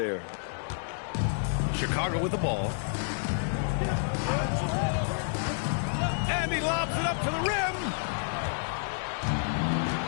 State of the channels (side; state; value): right; silent; digital silence